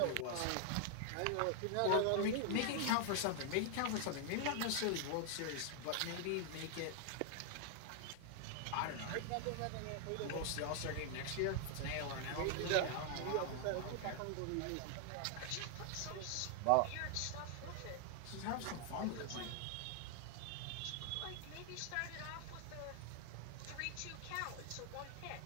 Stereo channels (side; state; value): both; different; correlation 0.00